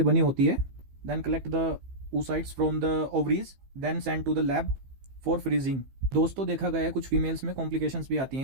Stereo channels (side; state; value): left; late; 15 ms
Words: बनी होती है। Then collect the oocytes from the ovaries, then send to the lab for freezing. दोस्तों, देखा गया है कुछ फीमेल्स में कॉम्प्लिकेशंस भी आती हैं